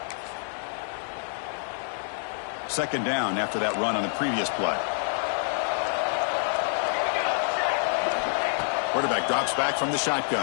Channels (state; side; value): silent; right; digital silence